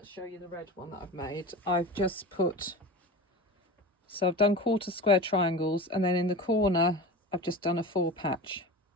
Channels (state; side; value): normal; both; correlation 0.30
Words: show you the red one that I've made, I've just put, so I've done 1/4 square triangles, and then in the corner I've just done a 4 patch